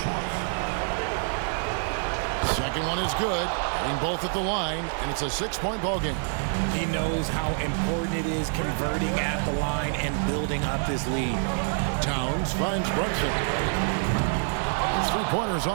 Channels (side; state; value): left; silent; 58 dB below the other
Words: Second one is good. Hitting both at the line, and it's a 6-point ball game. He knows how important it is converting at the line and building up this lead. Towns finds Brunson. His 3-pointer's